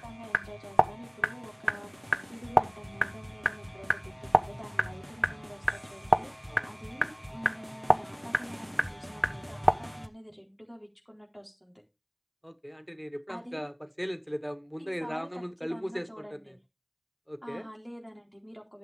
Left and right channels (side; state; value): both; identical; correlation 1.00